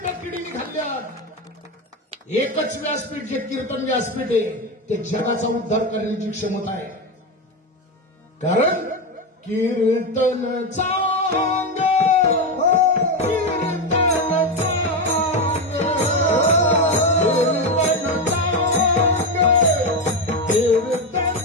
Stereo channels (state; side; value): normal; both; correlation 0.12